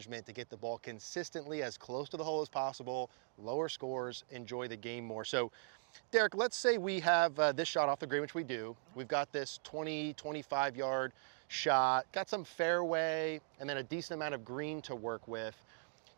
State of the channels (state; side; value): silent; left; digital silence